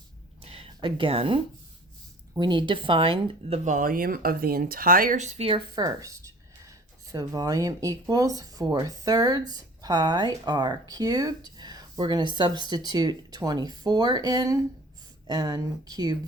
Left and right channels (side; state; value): both; normal; correlation 0.48